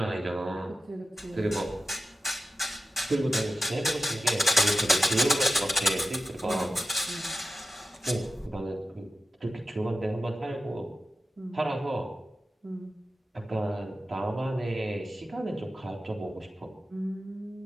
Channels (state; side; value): normal; both; correlation 0.92